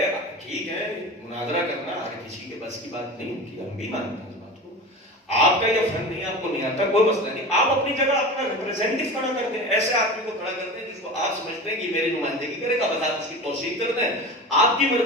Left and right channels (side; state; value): both; normal; correlation 0.31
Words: ٹھیک ہے مناظرہ کرنا ہر کسی کے بس کی بات نہیں ہوتی، ہم بھی مانتے ہیں اس بات کو، آپ کا یہ فن نہیں، آپ کو نہیں آتا، کوئی مسئلہ نہیں، آپ اپنی جگہ اپنا ریپرزینٹیو کھڑا کر دیں، ایسے آدمی کو کھڑا کر دیں جس کو آپ سمجھتے ہیں کہ میری نمائندگی کرے گا، بس آپ اس کی توثیق کر دیں، آپ کی